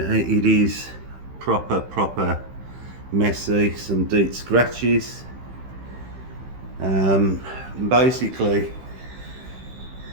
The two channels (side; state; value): left; late; 15 ms